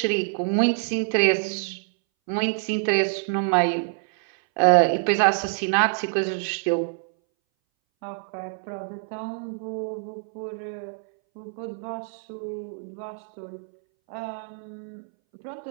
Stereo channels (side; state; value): left; silent; 60 dB below the other